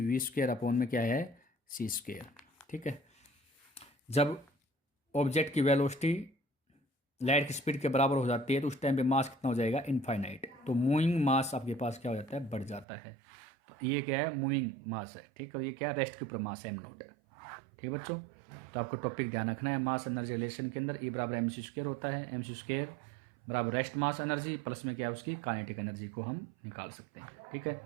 v² अपॉन में क्या है c²। ठीक है, जब ऑब्जेक्ट की वेलोसिटी लाइट की स्पीड के बराबर हो जाती है तो उस टाइम पे मास कितना हो जाएगा इनफाइनाइट, तो मूविंग मास आपके पास क्या हो जाता है बढ़ जाता है। तो ये क्या है मूविंग मास है। ठीक है, ये क्या है रेस्ट के ऊपर मास है m0। ठीक है बच्चों, तो आपको टॉपिक ध्यान रखना है, मास एनर्जी रिलेशन के अंदर E mc² होता है, mc² बराबर रेस्ट मास एनर्जी प्लस में क्या है उसकी काइनेटिक एनर्जी को हम निकाल सकते हैं। ठीक है,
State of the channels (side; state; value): left; drops out; at 12.9 s